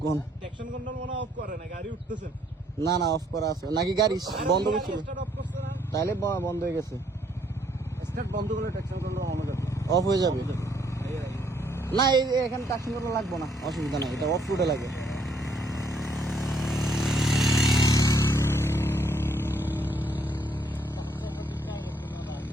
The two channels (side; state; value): both; normal; correlation 0.68